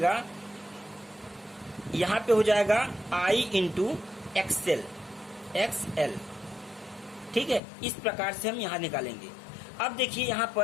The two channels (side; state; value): right; drops out; at 7.6 s